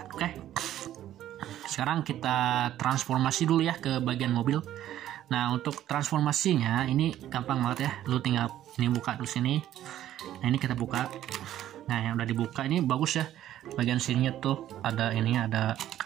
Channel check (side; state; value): left; quieter; 12.3 dB